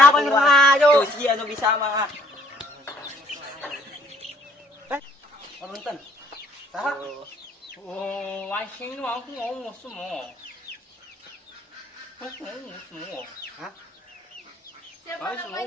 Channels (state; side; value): normal; both; correlation 0.62